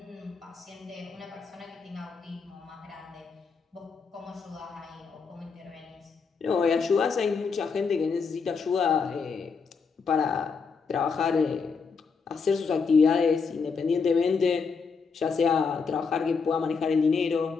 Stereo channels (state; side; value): quieter; right; 5.3 dB